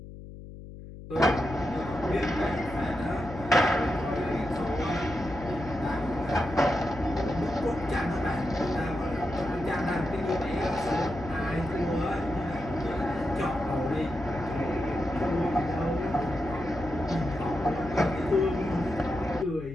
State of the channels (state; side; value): noise; left; hum, 13 dB below the sound